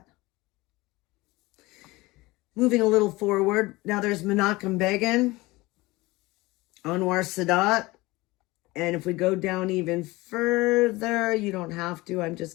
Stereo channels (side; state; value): right; quieter; 21.1 dB